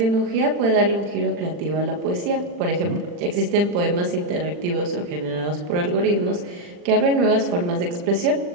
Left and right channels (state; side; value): late; left; 40 ms